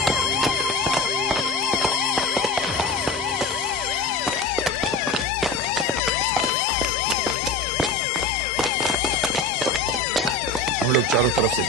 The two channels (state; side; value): quieter; right; 3.2 dB